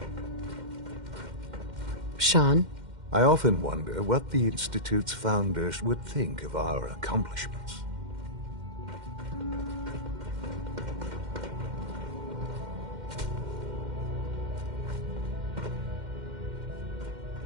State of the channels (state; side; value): late; left; 2.1 ms